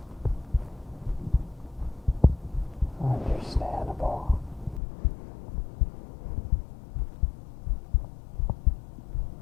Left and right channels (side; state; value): right; drops out; at 4.8 s